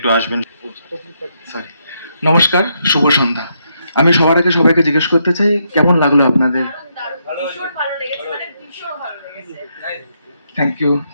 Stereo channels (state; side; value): inverted; both; correlation -0.78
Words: আসবেন। সরি, নমস্কার, শুভ সন্ধ্যা। আমি সবার আগে সবাইকে জিজ্ঞেস করতে চাই কেমন লাগলো আপনাদের? ভীষণ ভালো লেগেছে, মানে ভীষণ ভালো লেগেছে।